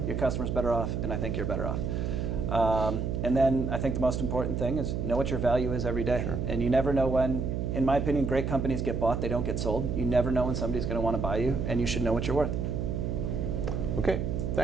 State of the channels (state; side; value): noise; right; hum, 1 dB below the sound